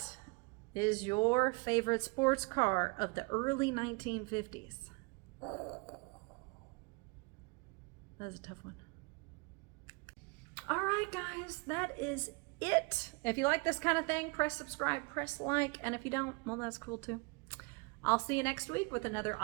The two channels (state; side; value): quieter; left; 30.1 dB